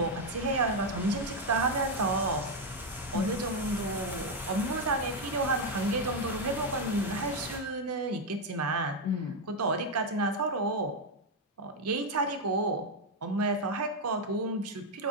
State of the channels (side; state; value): both; normal; correlation 0.04